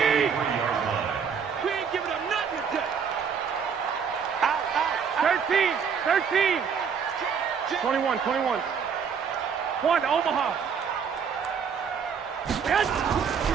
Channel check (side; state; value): left; quieter; 6.7 dB